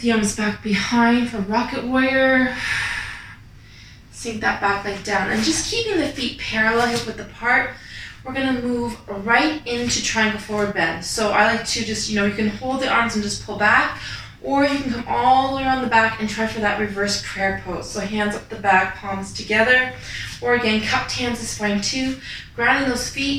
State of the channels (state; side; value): identical; both; correlation 1.00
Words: arms back behind for rocket warrior. Sink that back leg down. And just keeping the feet parallel, hip width apart, we're going to move right into triangle forward bend. So I like to just, you can hold the arms and just pull back. Or you can come all the way around the back and try for that reverse prayer pose. So hands up the back, palms together. Or again, cupped hands is fine too. Grounding those